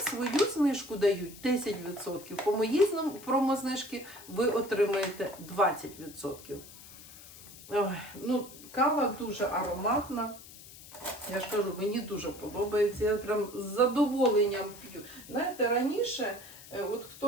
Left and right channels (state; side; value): noise; left; hiss, 18 dB below the sound